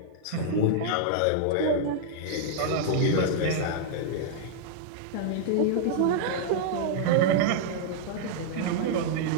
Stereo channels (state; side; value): different; both; correlation -0.01